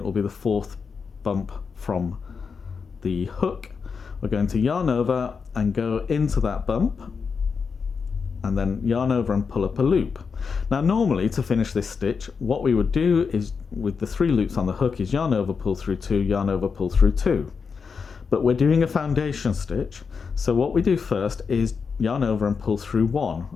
will be the 4th bump from the hook, we're going to yarn over and go into that bump, and then yarn over and pull up a loop. Now normally to finish this stitch, what we would do is, with the 3 loops on the hook, is yarn over, pull through 2, yarn over, pull through 2. But we're doing a foundation stitch, so what we do first is yarn over and pull through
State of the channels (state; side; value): quieter; right; 5.6 dB